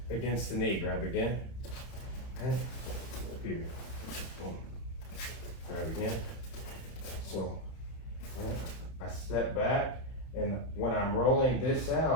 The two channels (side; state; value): right; late; 31 ms